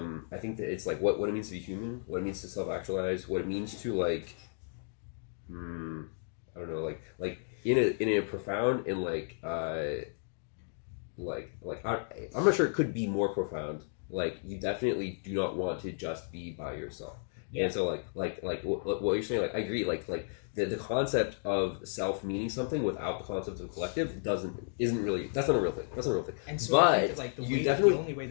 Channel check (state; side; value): silent; right; digital silence